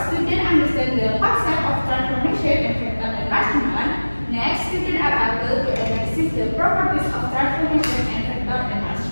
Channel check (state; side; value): inverted; both; correlation -1.00